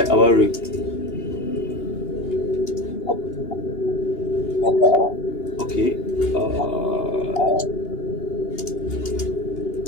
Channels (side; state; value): right; late; 2.8 ms